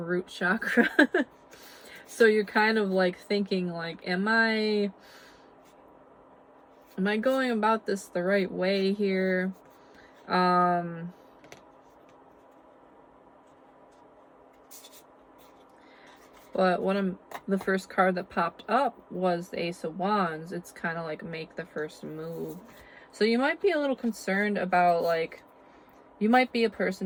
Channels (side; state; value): both; identical; correlation 1.00